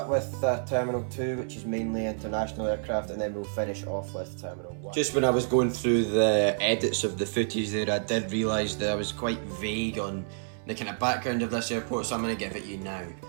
with Terminal 2, which is mainly international aircraft, and then we'll finish off with Terminal 1. Just when I was going through the edits of the footage there, I did realise that I was quite vague on the kind of background of this airport, so I'm going to give it you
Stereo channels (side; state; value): left; silent; 59 dB below the other